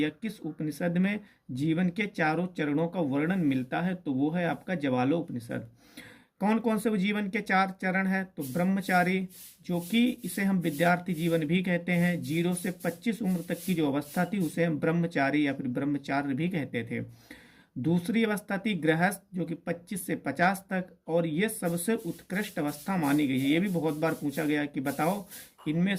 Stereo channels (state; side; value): identical; both; correlation 1.00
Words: किस उपनिषद में जीवन के चारों चरणों का वर्णन मिलता है? तो वो है आपका जवालो उपनिषद। कौन कौन से वो जीवन के 4 चरण है? तो ब्रह्मचारी, जो कि इसे हम विद्यार्थी जीवन भी कहते हैं। 0 से 25 उम्र तक की जो अवस्था थी उसे हम ब्रह्मचारी या फिर ब्रह्मचार्य भी कहते थे। दूसरी अवस्था थी गृहस्थ, जो कि 25 से 50 तक, और ये सबसे उत्कृष्ट अवस्था मानी गई है। ये भी बहुत बार पूछा गया कि बताओ इनमें